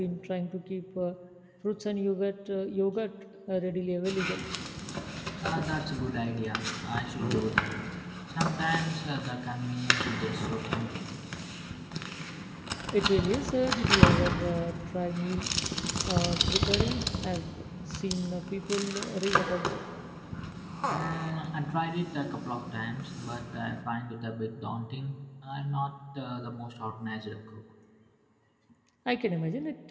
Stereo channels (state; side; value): identical; both; correlation 1.00